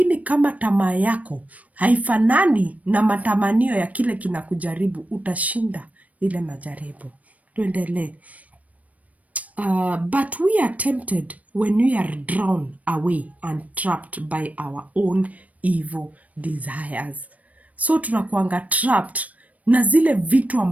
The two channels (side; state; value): left; late; 0.069 ms